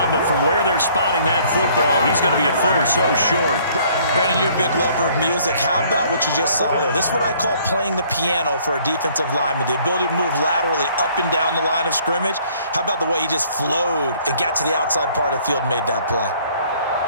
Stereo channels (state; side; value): inverted; both; correlation -0.60